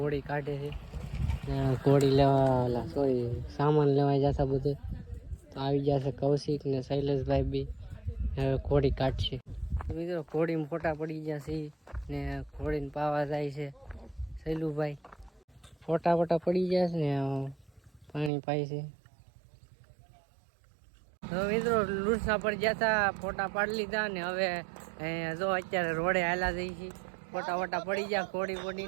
કાઢે છે, ઘોડી લેવા સામાન લેવા જતા બધે. તો આવી જશે કૌશિક ને શૈલેષભાઈ બી હવે ઘોડી કાઢશે. મિત્રો ઘોડીમાં ફોટા પડી ગયા છે ને ઘોડીને પાવા જાય છે શૈલુભાઈ. ફોટા પડી ગયા છે ને પાણી પાય છે. તો મિત્રો લુણસા પર ગયા હતા, ફોટા પાડી લીધા ને હવે જો અત્યારે રોડે હાલા જઈ છે. ફોટા પડી ગયા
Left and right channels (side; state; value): left; drops out; at 18.3 s